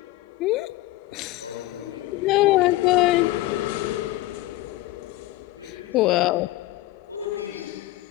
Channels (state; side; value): quieter; right; 17.3 dB